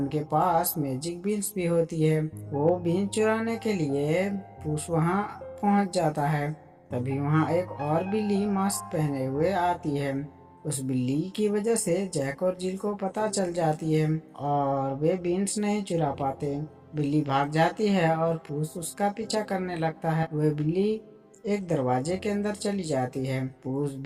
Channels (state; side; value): identical; both; correlation 1.00